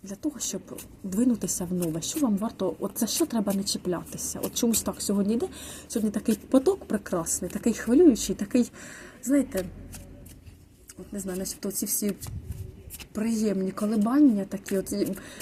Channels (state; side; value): identical; both; correlation 1.00